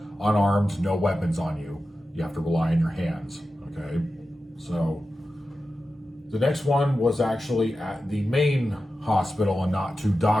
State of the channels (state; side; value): normal; both; correlation 0.92